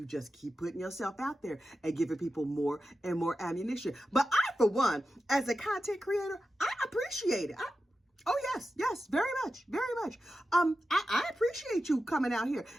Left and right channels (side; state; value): both; normal; correlation 0.92